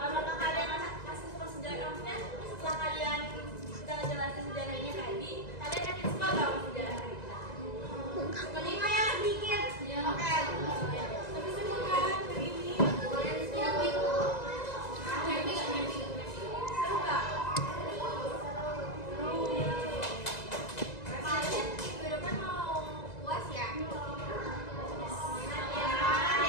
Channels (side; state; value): right; late; 2.0 ms